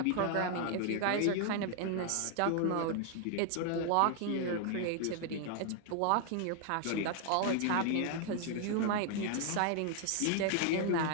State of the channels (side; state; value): both; different; correlation 0.00